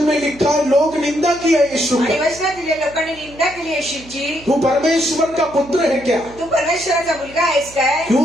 में लिखा है, लोग निंदा किया यीशु आणि का। वचनात दिले, लोकांनी निंदा केली येशूची. तू परमेश्वर का पुत्र है क्या? तू परमेश्वराचा मुलगा आहेस काय?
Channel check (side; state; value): right; noise; hum, 21 dB below the sound